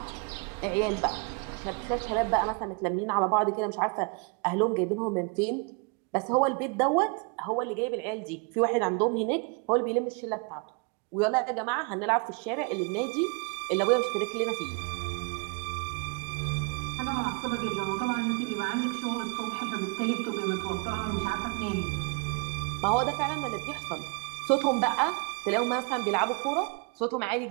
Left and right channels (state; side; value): quieter; left; 33.6 dB